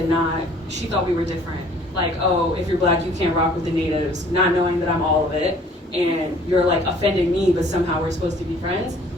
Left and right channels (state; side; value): normal; both; correlation 0.55